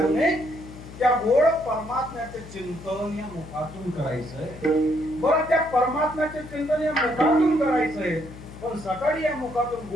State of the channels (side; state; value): left; noise; hum, 15 dB below the sound